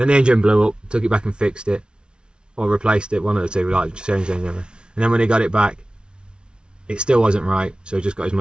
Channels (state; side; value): late; left; 0.055 ms